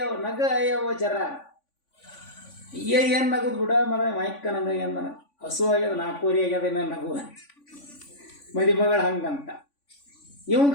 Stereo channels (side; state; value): right; late; 3.5 ms